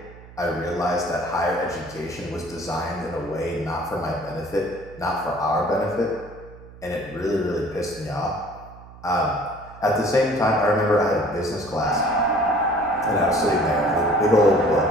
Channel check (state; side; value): noise; right; hum, 19 dB below the sound